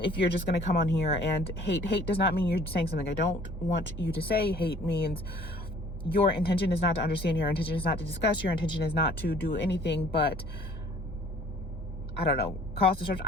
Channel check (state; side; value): normal; both; correlation 0.53